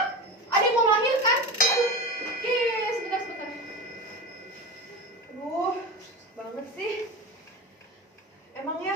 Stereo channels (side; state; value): both; normal; correlation 0.26